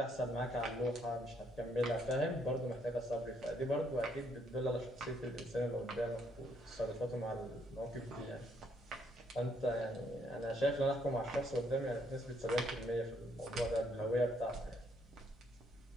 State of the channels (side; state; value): both; normal; correlation 0.71